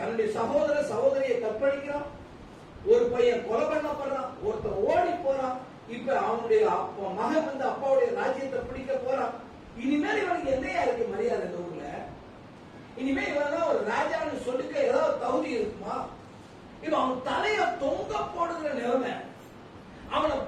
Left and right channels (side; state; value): both; identical; correlation 1.00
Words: சகோதரியை கற்பழிக்கிறான், ஒரு பையன் கொலை பண்ணப்படுறான், ஒருத்தன் ஓடி போறான், இப்ப அவனுடைய மகன் வந்து அப்பாவுடைய ராஜ்யத்தை பிடிக்க போறான். இனிமேல் இவனுக்கு என்னையா இருக்கு மரியாதை இந்த ஊர்ல? இனிமே இவன் ஒரு ராஜான்னு சொல்லிக்க ஏதாவது தகுதி இருக்குமா? இப்ப அவன் தலைய தொங்க போடுகிற நிலைமை, அவனை